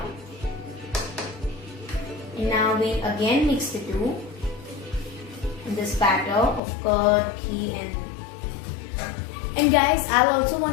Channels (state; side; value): drops out; right; at 6.6 s